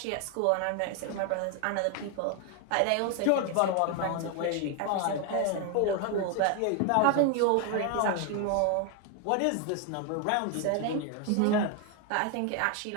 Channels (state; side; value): different; both; correlation 0.01